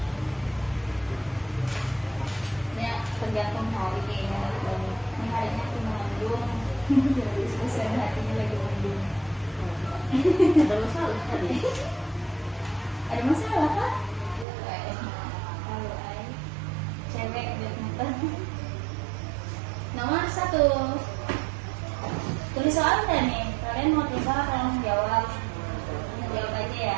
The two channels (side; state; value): left; drops out; at 14.5 s